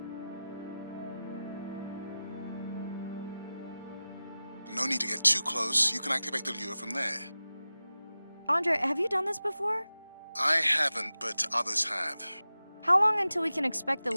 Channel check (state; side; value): inverted; both; correlation -0.95